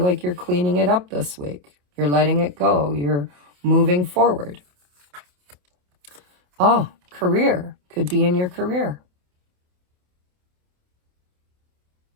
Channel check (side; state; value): left; late; 28 ms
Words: like you're cleaning it up this week. You're letting it go. You're moving forward. Oh, career. Could be in your career.